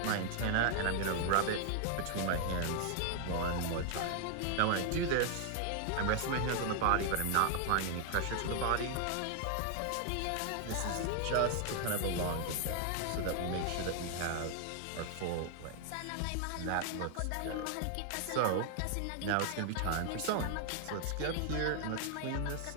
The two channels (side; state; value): both; different; correlation 0.00